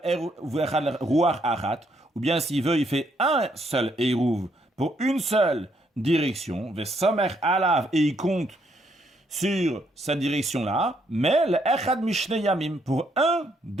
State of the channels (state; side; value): normal; both; correlation 0.73